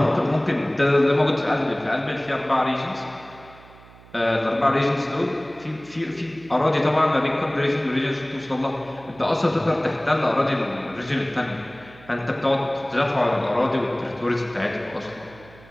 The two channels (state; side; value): noise; right; hum, 23 dB below the sound